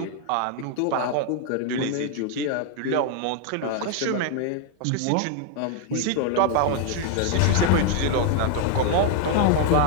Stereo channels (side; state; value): both; different; correlation 0.00